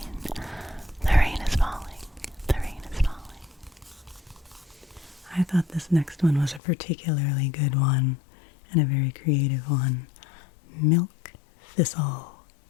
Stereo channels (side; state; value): right; drops out; at 6.6 s